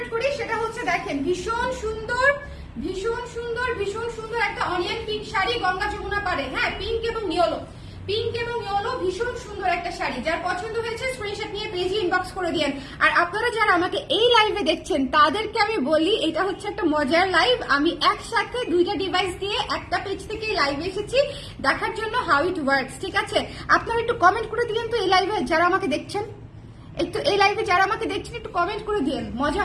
করি, সেটা হচ্ছে দেখেন ভীষণ সুন্দর ভীষণ সুন্দর ভীষণ সুন্দর একটা অনিয়ন পিঙ্ক শাড়ি, গঙ্গা যমুনা পারে। হ্যাঁ পিঙ্ক এবং ইয়েলো, পিঙ্ক এবং ইয়েলো ভীষণ সুন্দর একটা শাড়ি। যার পছন্দ হয়েছে স্ক্রিনশট নিয়ে পেজে ইনবক্স করে দিয়েন। আর আপনারা যারা আমাকে এই লাইভে দেখছেন তাদেরকে আমি বলি এটা হচ্ছে একটা মজার লাইভ। আমি একসাথে দুইটা ডিভাইস দিয়ে একটা পেজ থেকে লাইভে এসেছি দেখার জন্য হাউ ইট ওয়ার্কস। ঠিক আছে, আপনারা একটু কমেন্ট করে দিলেন তো এই লাইভে যারা আমাকে দেখছেন, একটু এই লাইভে যারা আমাকে দেখছেন একটু কমেন্ট করে দিন, মজা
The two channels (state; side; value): identical; both; correlation 1.00